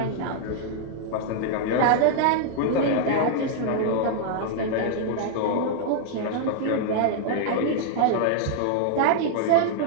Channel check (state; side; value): different; both; correlation -0.01